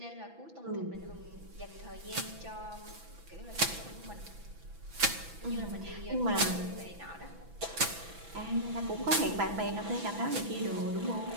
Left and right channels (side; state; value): left; late; 6.0 ms